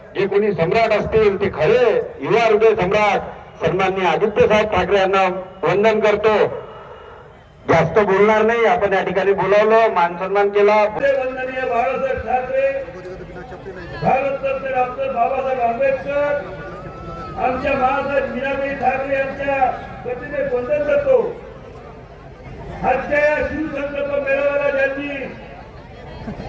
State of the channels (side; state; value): both; identical; correlation 1.00